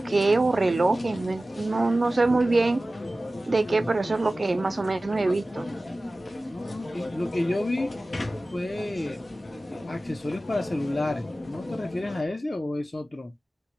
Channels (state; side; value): normal; both; correlation 0.96